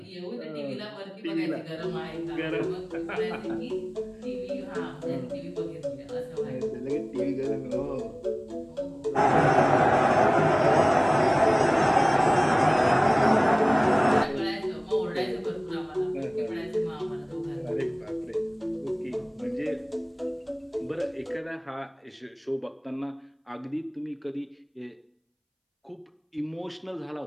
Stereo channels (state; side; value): identical; both; correlation 1.00